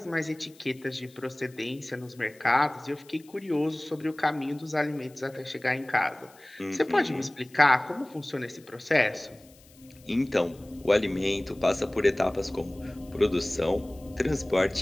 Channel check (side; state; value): left; noise; hiss, 26 dB below the sound